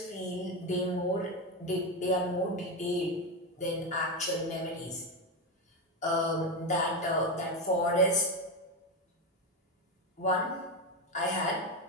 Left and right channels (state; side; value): normal; both; correlation 0.12